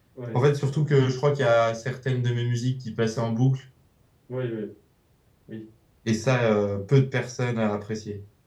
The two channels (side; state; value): both; identical; correlation 1.00